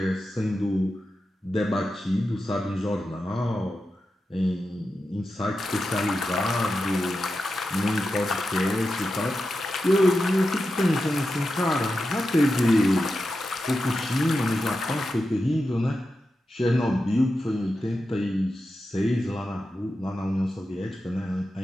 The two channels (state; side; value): normal; both; correlation 0.90